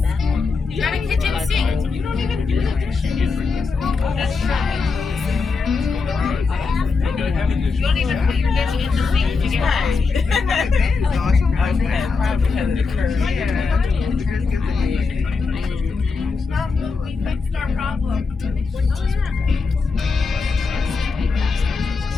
You got a kitchen sink. You don't even do the dishes. That's right. You don't even put your dish in the sink to get right. Probably because of the curve. We fixed our problem.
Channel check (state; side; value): quieter; right; 4.6 dB